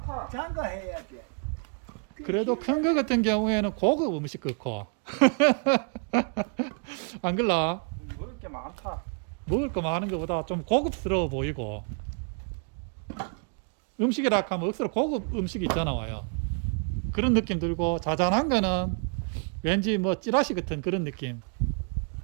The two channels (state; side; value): quieter; left; 37.9 dB